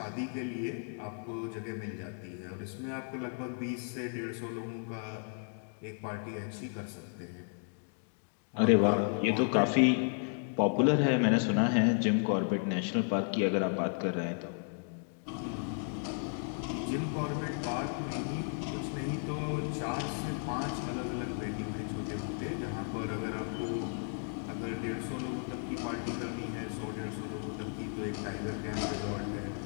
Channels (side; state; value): right; silent; 55 dB below the other